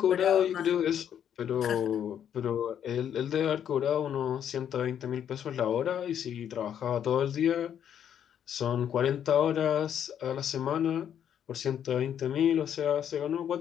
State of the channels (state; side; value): quieter; right; 9.3 dB